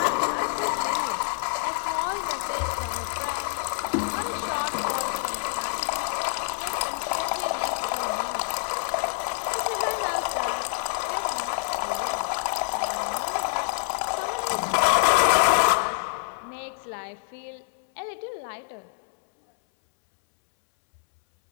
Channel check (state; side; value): silent; right; 60 dB below the other